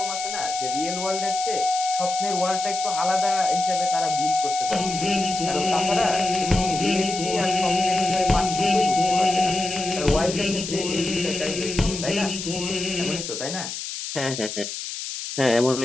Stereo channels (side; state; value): left; noise; hiss, 7 dB below the sound